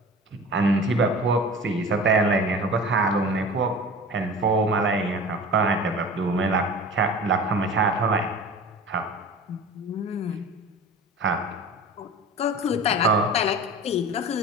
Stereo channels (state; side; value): normal; both; correlation 0.37